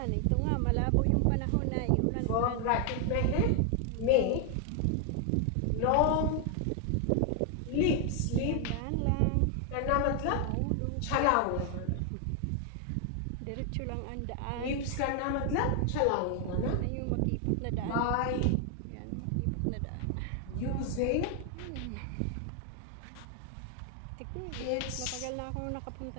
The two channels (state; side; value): different; both; correlation 0.00